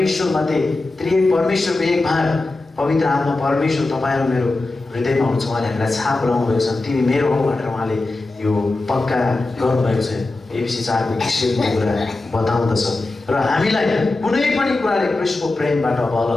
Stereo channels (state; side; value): quieter; right; 3.1 dB